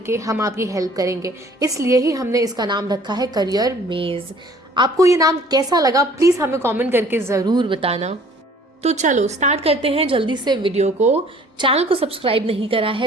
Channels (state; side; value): normal; both; correlation 0.54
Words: हम आपकी हेल्प करेंगे। इसलिए ही हमने इसका नाम रखा है करियर मेज। आपको ये नाम कैसा लगा प्लीज़ हमें कमेंट करके ज़रूर बताना। तो चलो स्टार्ट करते हैं जल्दी से वीडियो को। चैनल को सब्सक्राइब नहीं करा